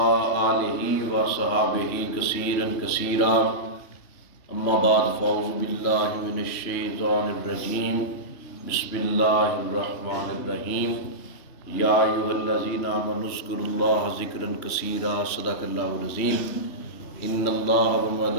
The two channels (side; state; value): right; late; 3.1 ms